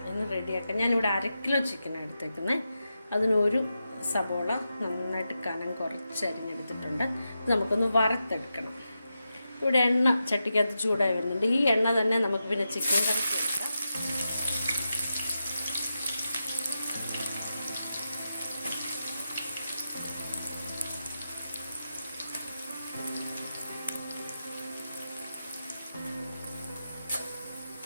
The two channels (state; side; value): inverted; both; correlation -0.89